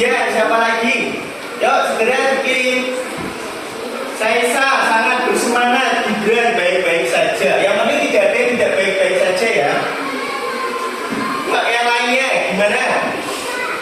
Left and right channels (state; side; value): identical; both; correlation 1.00